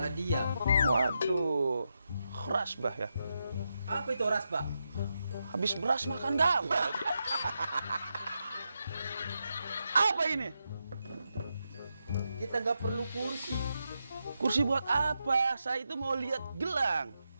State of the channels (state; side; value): inverted; both; correlation -0.86